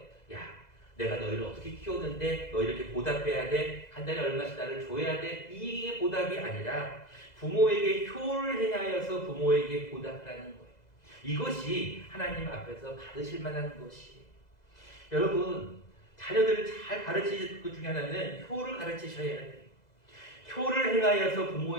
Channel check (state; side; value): late; right; 2.0 ms